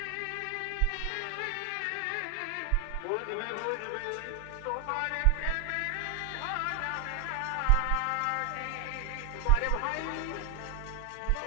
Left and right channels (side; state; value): both; different; correlation 0.00